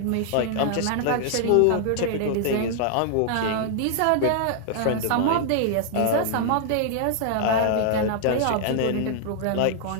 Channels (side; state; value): both; different; correlation 0.00